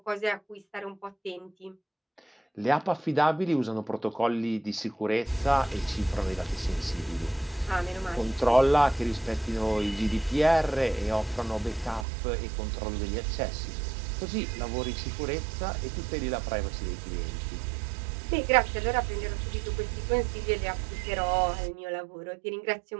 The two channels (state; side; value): drops out; left; at 12.1 s